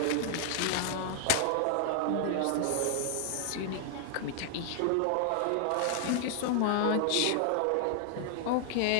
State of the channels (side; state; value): both; different; correlation 0.00